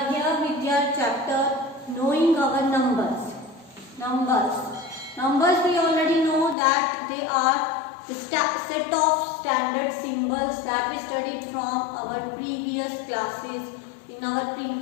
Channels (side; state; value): right; drops out; at 6.6 s